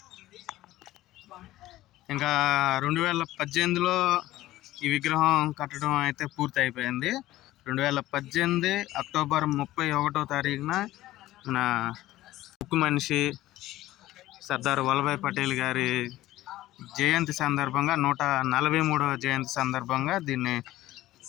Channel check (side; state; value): right; quieter; 15.8 dB